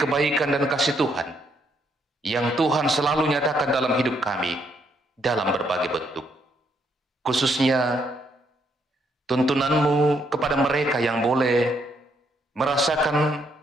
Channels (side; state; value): both; normal; correlation 0.73